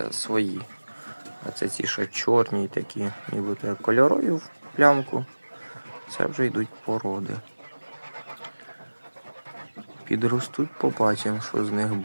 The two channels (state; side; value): inverted; both; correlation -1.00